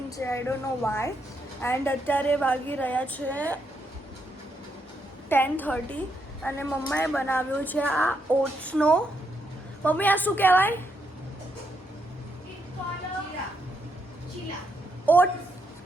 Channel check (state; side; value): normal; both; correlation 0.79